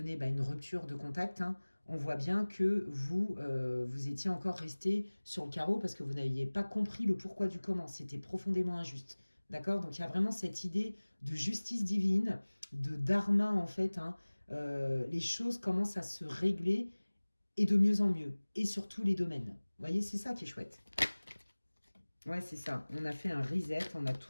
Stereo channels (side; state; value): both; inverted; correlation -1.00